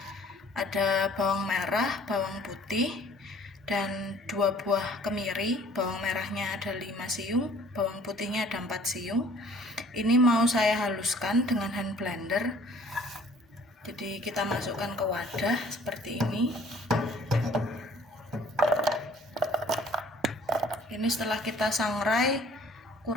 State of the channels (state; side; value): normal; both; correlation 0.54